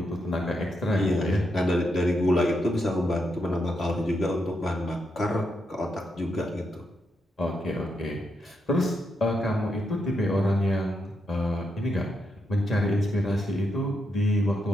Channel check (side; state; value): both; normal; correlation 0.82